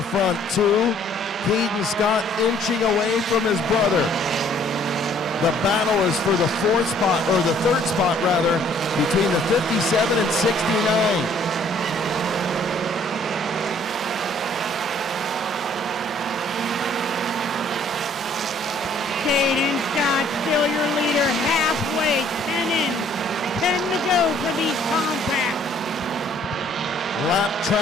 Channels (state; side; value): normal; both; correlation 0.60